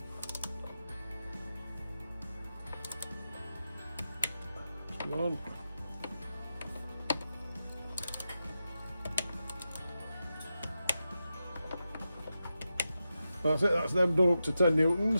Come on. That's it, that's them done up to 10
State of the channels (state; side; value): inverted; both; correlation -0.90